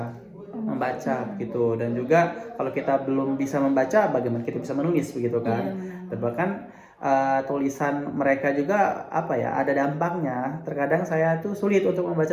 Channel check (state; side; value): identical; both; correlation 1.00